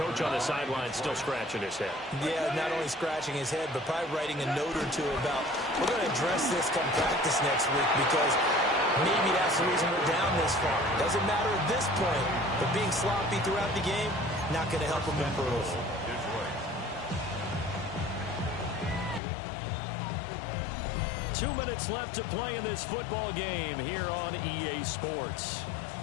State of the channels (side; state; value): right; drops out; at 19.2 s